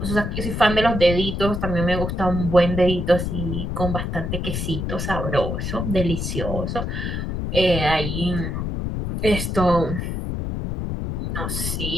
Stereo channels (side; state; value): left; noise; rumble, 3 dB below the sound